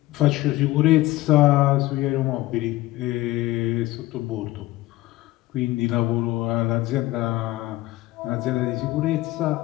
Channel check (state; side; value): quieter; right; 17.8 dB